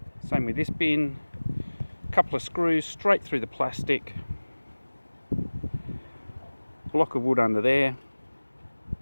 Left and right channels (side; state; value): both; inverted; correlation -1.00